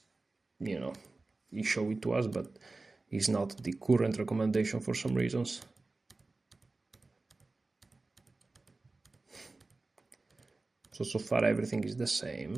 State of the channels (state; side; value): quieter; left; 3.4 dB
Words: he showed it to us, but it's not the current recommendation for some reasons. So far everything is the